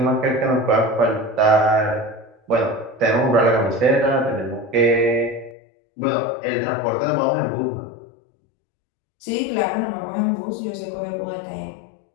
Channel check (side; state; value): right; drops out; at 5.6 s